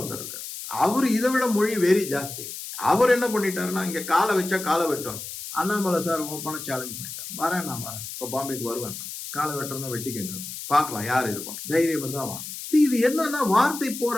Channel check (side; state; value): left; noise; hiss, 9 dB below the sound